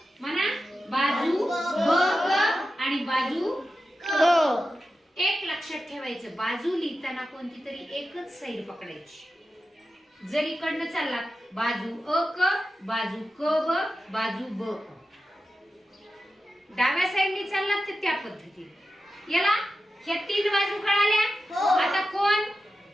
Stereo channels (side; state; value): both; normal; correlation 0.92